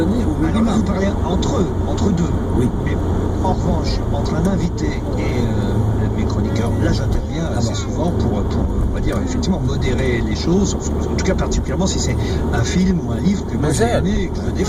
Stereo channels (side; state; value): both; identical; correlation 1.00